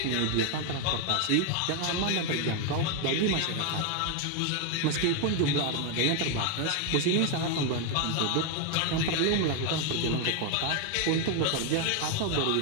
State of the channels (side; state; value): both; different; correlation 0.01